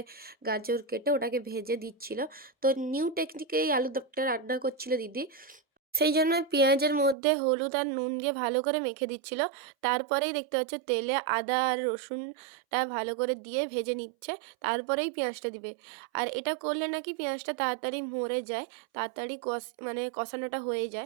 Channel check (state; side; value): drops out; left; at 7.2 s